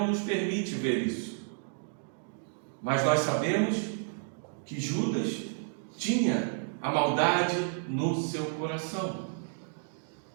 nos permite ver isso, mas nós sabemos que Judas tinha a maldade no seu coração.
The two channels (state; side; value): silent; left; digital silence